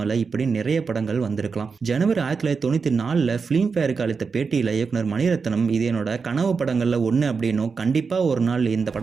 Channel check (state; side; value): quieter; left; 5.2 dB